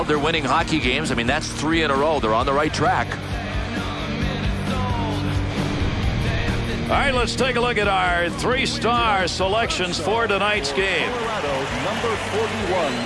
they're winning hockey games. I mean, that's 3 in a row. They're on the right track. All right, let's take a look at our 3-star selections for tonight's game. Colorado, number 41,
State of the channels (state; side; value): identical; both; correlation 1.00